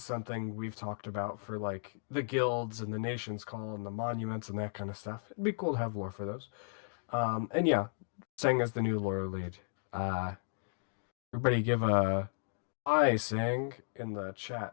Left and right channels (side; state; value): right; silent; digital silence